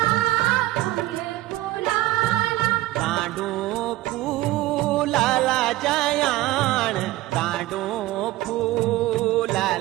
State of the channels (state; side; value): quieter; left; 17.1 dB